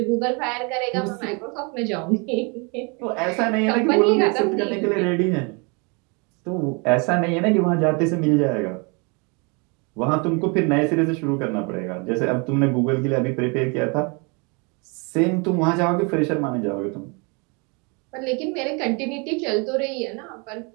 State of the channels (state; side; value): quieter; left; 32.0 dB